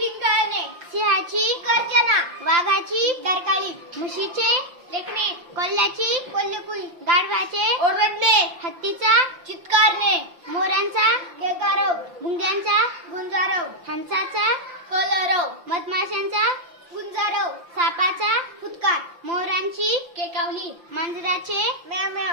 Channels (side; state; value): left; late; 5.8 ms